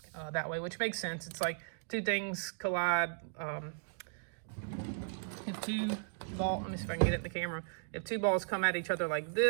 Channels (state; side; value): silent; left; digital silence